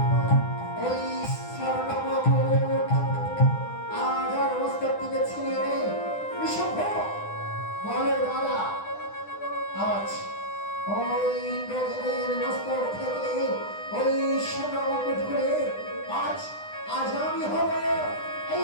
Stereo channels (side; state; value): right; late; 9.9 ms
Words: ওই স্বর্ণমুকুট আজ আর মস্তক থেকে ছিনিয়ে নে নিঃসম্ভ বলে দাদা আজ ওই ইন্দ্রদেবের মস্তক থেকে ওই স্বর্ণমুকুট খুলে আজ আজ আমি হব এই